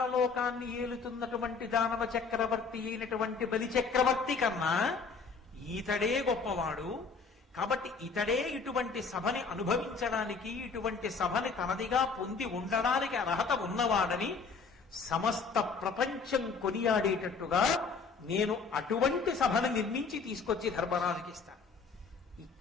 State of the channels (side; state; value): right; quieter; 4.9 dB